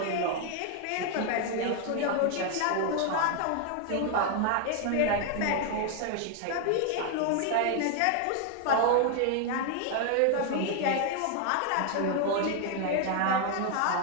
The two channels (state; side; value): different; both; correlation 0.01